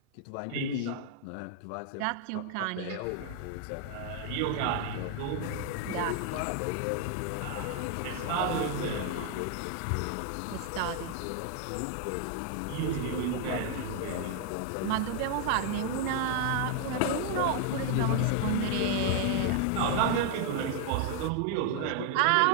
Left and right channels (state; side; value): different; both; correlation 0.00